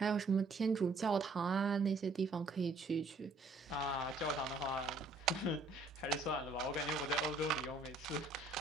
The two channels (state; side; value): quieter; left; 3.2 dB